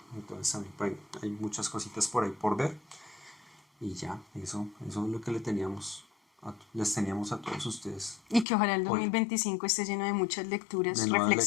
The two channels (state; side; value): drops out; right; at 8.5 s